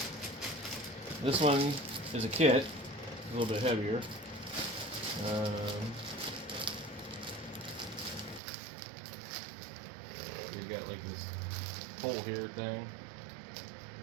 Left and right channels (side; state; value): left; drops out; at 8.4 s